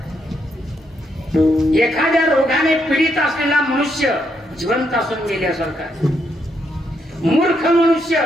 एखाद्या रोगाने पीडित असलेला मनुष्य जिवंत असून मेल्यासारखा आहे. मूर्ख मनुष्य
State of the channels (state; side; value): normal; both; correlation 0.77